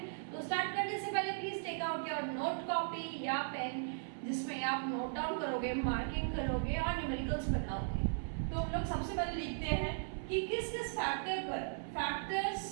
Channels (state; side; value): silent; left; 53 dB below the other